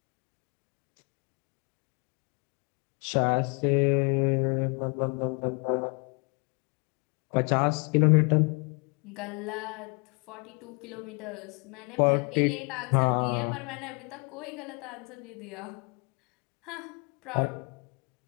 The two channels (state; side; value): quieter; right; 34.8 dB